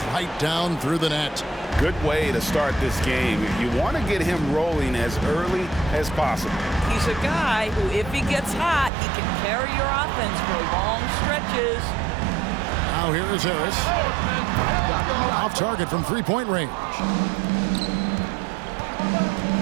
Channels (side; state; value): left; drops out; at 8.9 s